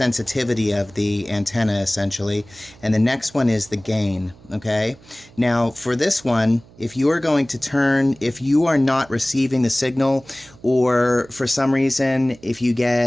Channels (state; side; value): noise; right; hum, 25 dB below the sound